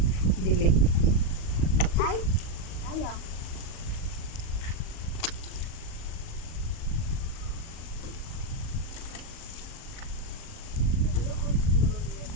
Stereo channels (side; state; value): right; late; 38 ms